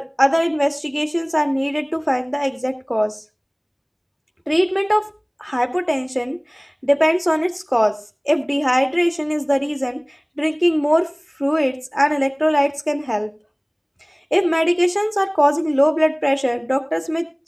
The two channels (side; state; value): both; identical; correlation 1.00